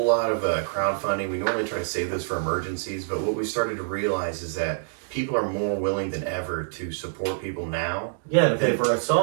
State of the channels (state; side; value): silent; left; 61 dB below the other